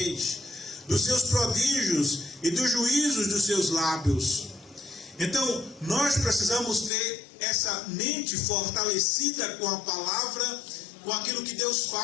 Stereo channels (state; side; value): drops out; right; at 6.9 s